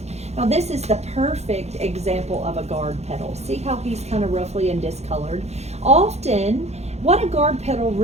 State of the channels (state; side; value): late; left; 0.31 ms